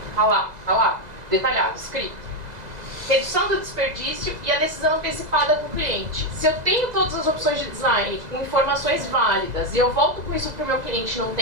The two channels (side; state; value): left; late; 2.0 ms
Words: Tá lá, detalhado, escrito. Redução do desperdício e a decisão antecipada com o cliente. Se eu tenho todas as opções de design com informações válidas e eu volto com isso para o meu cliente num